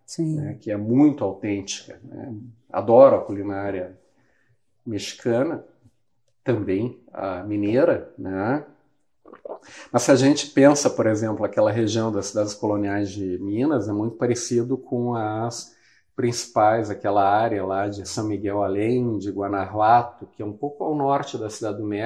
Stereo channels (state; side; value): identical; both; correlation 1.00